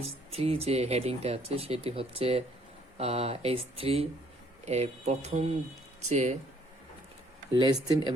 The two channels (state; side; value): normal; both; correlation 0.64